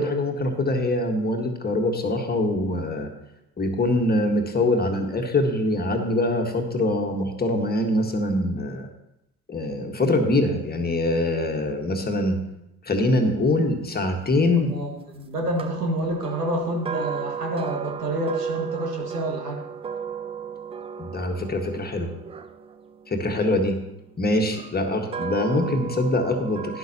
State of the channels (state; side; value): normal; both; correlation 0.46